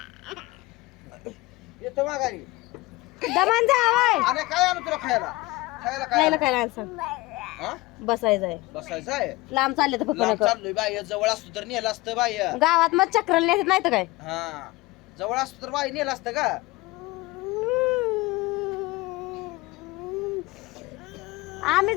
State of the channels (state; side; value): quieter; right; 21.3 dB